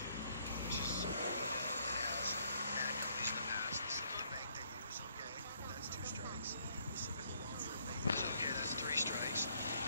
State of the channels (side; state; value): both; inverted; correlation -0.68